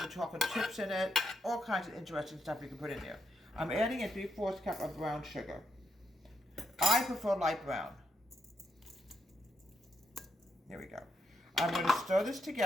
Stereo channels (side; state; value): both; normal; correlation 0.80